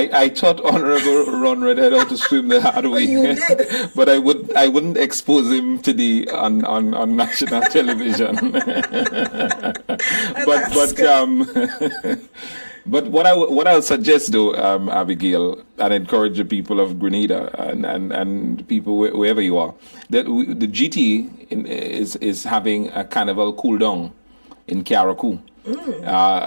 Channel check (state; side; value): inverted; both; correlation -1.00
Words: taught Honorable Ron Redhead how to swim the hard way. You did. But I wouldn't expose him to on national television. But what I'll suggest, though, Abigail, and encourage the people of Grenada and people wherever you are, that the GT is having a carnival cool down in Carriacou.